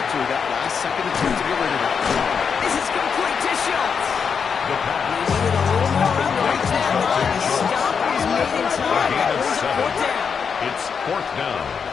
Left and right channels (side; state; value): right; quieter; 6.3 dB